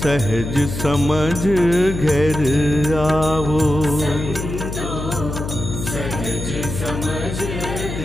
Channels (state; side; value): noise; left; hum, 6 dB below the sound